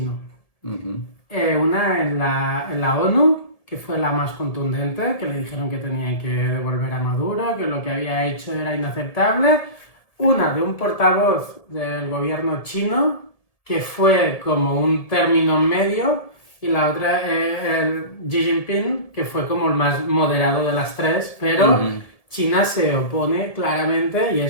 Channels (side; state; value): right; late; 1.7 ms